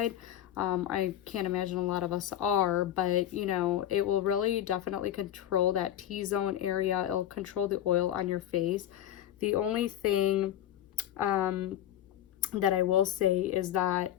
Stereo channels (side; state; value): right; quieter; 11.5 dB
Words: I can't imagine a lot of us are, but you know, it will really definitely control that T-zone area. It'll control the oil on your face. The only thing that I will say is that